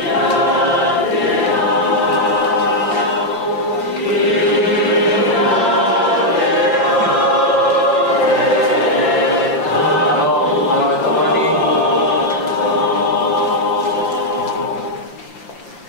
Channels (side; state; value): right; late; 5.9 ms